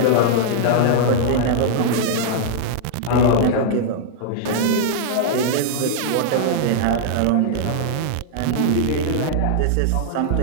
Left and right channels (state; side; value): different; both; correlation -0.01